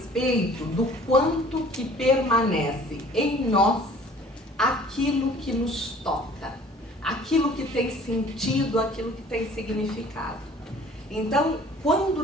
do quanto que permanece em nós aquilo que nos toca, aquilo que tem sentido, aquilo que tem significado. Então, quando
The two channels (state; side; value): normal; both; correlation 0.51